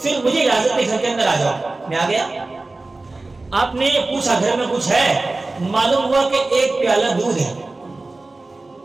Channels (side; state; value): left; quieter; 3.2 dB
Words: پھر مجھے اجازت دی گھر کے اندر آ جاؤ، میں آ گیا۔ آپ نے پوچھا گھر میں کچھ ہے، معلوم ہوا کہ ایک پیالہ دودھ ہے۔